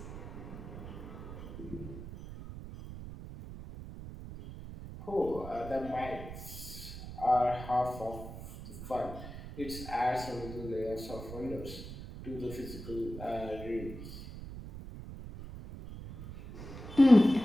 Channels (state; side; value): noise; right; rumble, 11 dB below the sound